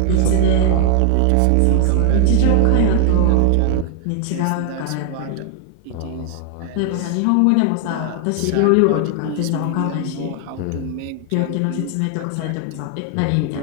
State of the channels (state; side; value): different; both; correlation 0.00